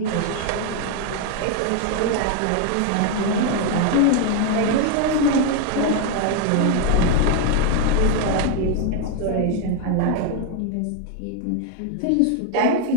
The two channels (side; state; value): both; different; correlation 0.01